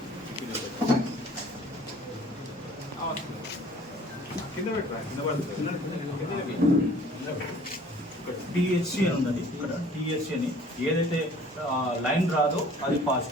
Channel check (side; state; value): both; normal; correlation 0.51